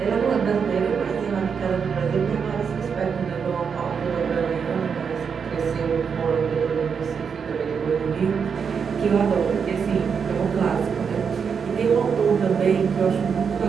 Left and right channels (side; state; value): left; quieter; 6.4 dB